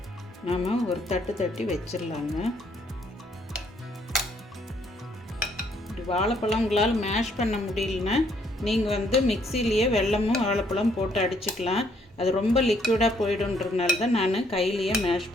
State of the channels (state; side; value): normal; both; correlation 0.68